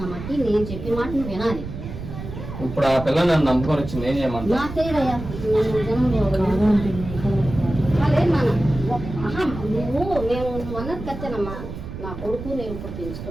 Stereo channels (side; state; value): right; noise; rumble, 9 dB below the sound